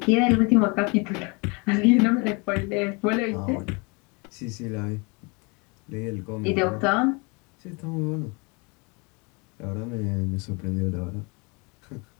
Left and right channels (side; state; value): right; quieter; 29.9 dB